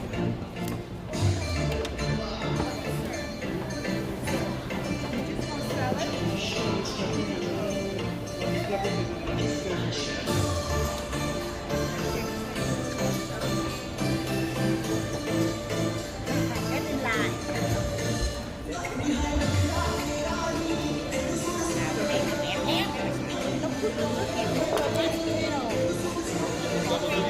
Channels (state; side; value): identical; both; correlation 1.00